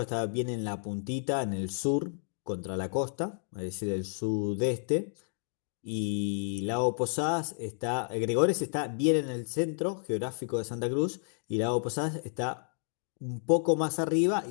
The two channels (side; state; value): right; silent; digital silence